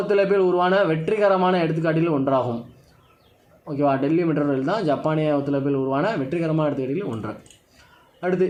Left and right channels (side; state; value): both; identical; correlation 1.00